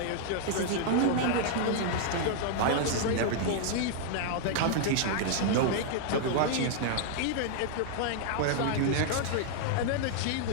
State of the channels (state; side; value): different; both; correlation -0.01